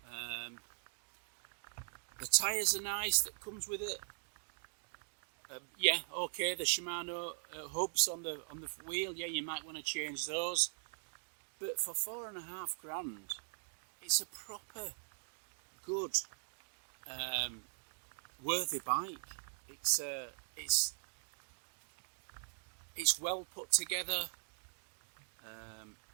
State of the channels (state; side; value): silent; left; digital silence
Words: The tyres are nice that comes with it. Yeah, okay. The Shimano hubs on the wheel. Yeah, you might want to change those. But for £4,500, it's a proper good, worthy bike. It's well put together.